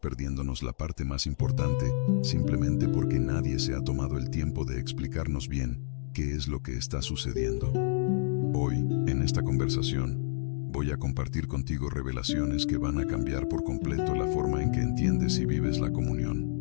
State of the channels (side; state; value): right; silent; digital silence